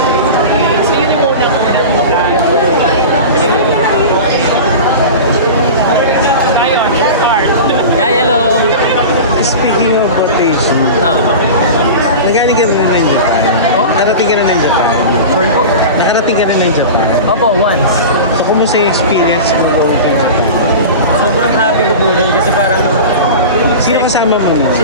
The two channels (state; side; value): inverted; both; correlation -0.30